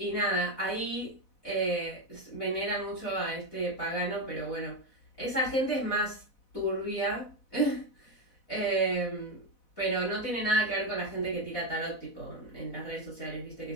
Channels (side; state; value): right; late; 4.0 ms